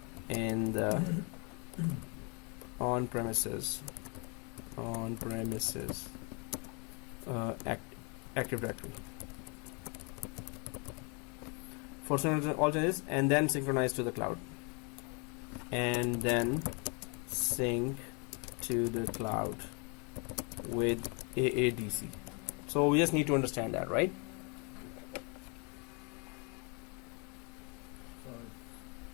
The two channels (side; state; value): right; quieter; 33.7 dB